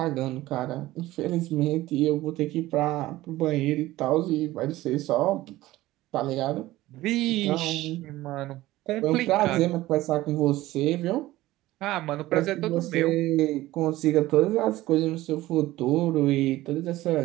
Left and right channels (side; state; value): left; quieter; 16.9 dB